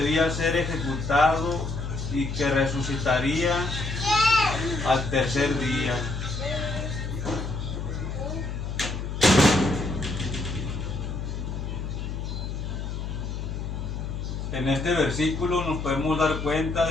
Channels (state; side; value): noise; left; hum, 5 dB below the sound